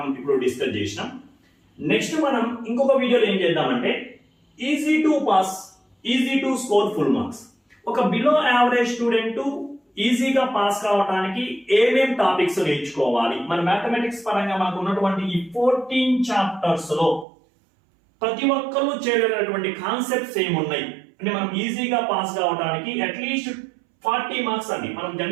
ఇప్పుడు డిస్కస్ చేసినాం. నెక్స్ట్ మనం ఇంకొక వీడియోలో ఏం చేద్దామంటే easy to pass, easy to score full marks. ఒక బిలో యావరేజ్ స్టూడెంట్ ఈజీగా పాస్ కావడానికి ఏమేం టాపిక్స్ నేర్చుకోవాలి, మన మ్యాథమెటిక్స్ పరంగా మనకు ఉన్నటువంటి ఈ 14 చాప్టర్స్ లో ప్రతి ఒక్కరు చేయగలిగినటువంటి కాన్సెప్ట్స్ ఏమున్నాయి అంటే మనం ఈజీగా పాస్ కావడానికి అట్లీస్ట్ 40 మార్క్స్ అండి. మనం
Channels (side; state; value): left; drops out; at 17.2 s